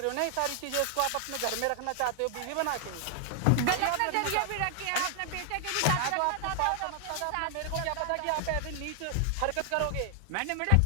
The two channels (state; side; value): different; both; correlation 0.00